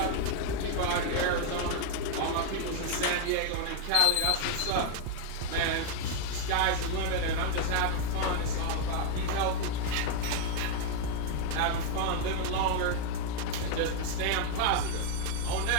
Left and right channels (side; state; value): both; different; correlation 0.00